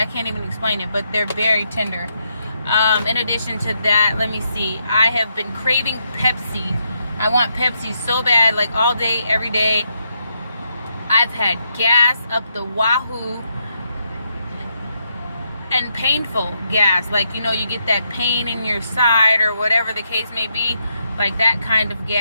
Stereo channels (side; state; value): both; inverted; correlation -0.80